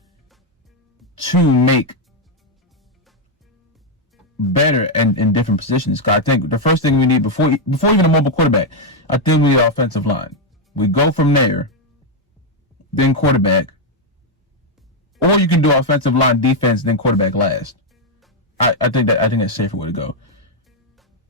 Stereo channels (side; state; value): both; normal; correlation 0.01